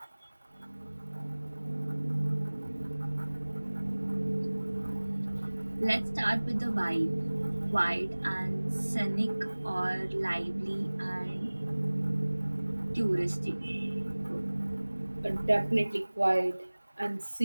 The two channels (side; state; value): both; inverted; correlation -1.00